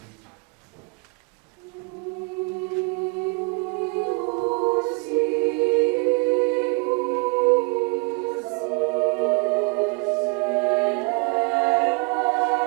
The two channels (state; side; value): quieter; left; 29.6 dB